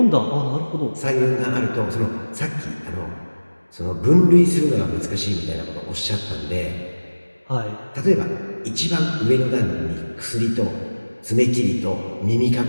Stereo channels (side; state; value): both; inverted; correlation -1.00